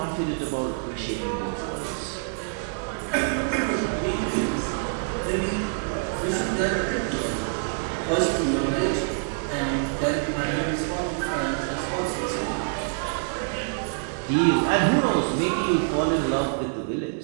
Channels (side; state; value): left; silent; digital silence